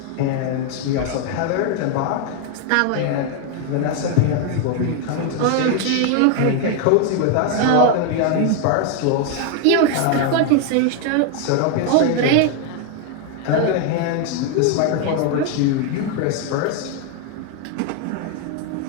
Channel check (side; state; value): both; different; correlation 0.01